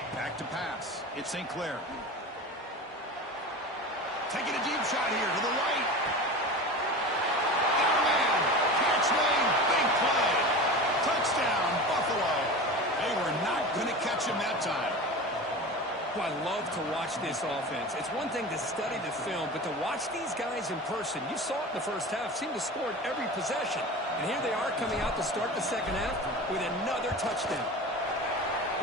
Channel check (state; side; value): normal; both; correlation 0.31